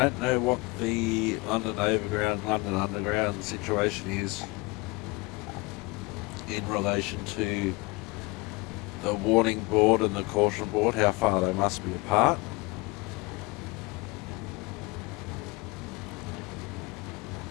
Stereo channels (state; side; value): quieter; right; 24.9 dB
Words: know what the London Overground, London Underground situation is in relation to the warning board and the caution board, how far they must be apart.